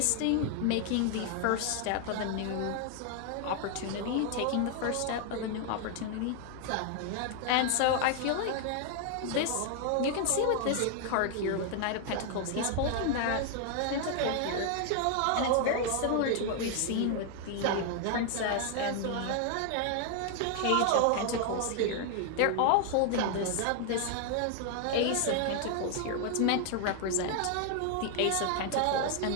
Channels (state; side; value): different; both; correlation 0.00